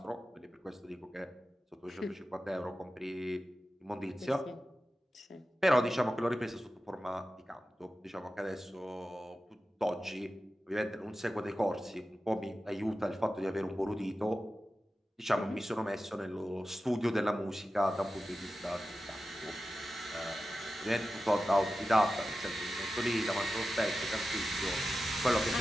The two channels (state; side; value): normal; both; correlation 0.93